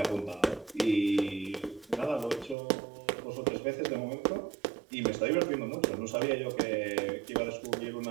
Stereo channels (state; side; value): drops out; left; at 2.6 s